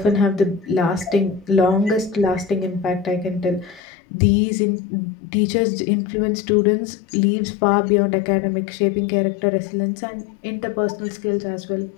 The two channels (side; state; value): right; drops out; at 3.8 s